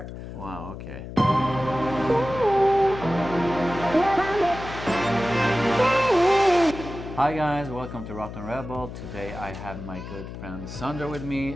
Wow, okay. Hi guys, welcome to therottenrebel. Today I have my good friend Sandra with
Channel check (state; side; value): noise; left; hum, 10 dB below the sound